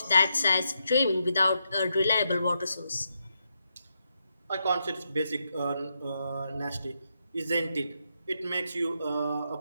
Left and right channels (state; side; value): inverted; both; correlation -0.82